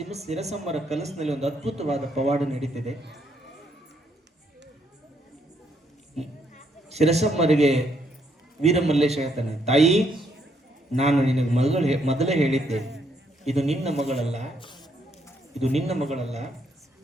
ಸಿರಸಮ್ಮರ ಕನಸಿನಲ್ಲಿ ಒಂದು ಅದ್ಭುತವಾದ ಪವಾಡ ನಡೀತಿದೆ. ಸಿರಸಮ್ಮರಿಗೆ ವೀರಮಲ್ಲೇಶ ಹೇಳ್ತಾನೆ, ತಾಯಿ ನಾನು ನಿನಗೆ ಮೊದಲೇ ಹೇಳಿದ್ದೆ, ಇದು ನಿನ್ನ ಮಗಳಲ್ಲ, ಇದು ನಿನ್ನ ಮಗಳಲ್ಲ,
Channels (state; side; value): normal; both; correlation 0.73